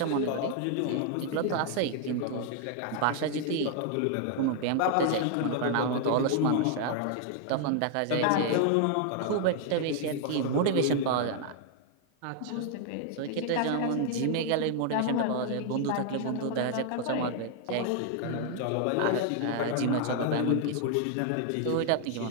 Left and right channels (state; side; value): different; both; correlation 0.00